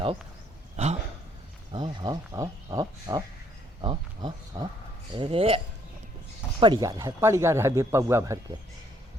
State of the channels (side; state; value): both; normal; correlation 0.67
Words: आओ आओ आओ आओ आओ आओ आओ आओ आओ आओ, अरे पड़ गया रहे अभी पौआ भर के,